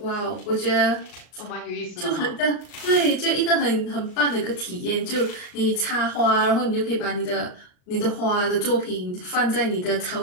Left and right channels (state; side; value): late; right; 39 ms